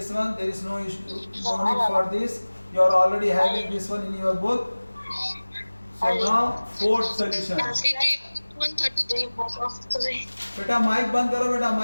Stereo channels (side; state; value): both; inverted; correlation -1.00